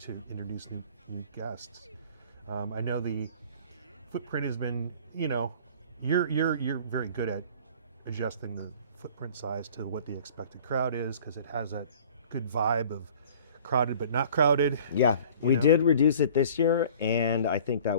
introduce new guests. I know the footprint has been, you're very good at adjusting the footprint size to what the expected crowd is, because it has a good vibe of crowded but not crowded. Yeah, we did reduce it this year, and I think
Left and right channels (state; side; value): inverted; both; correlation -0.48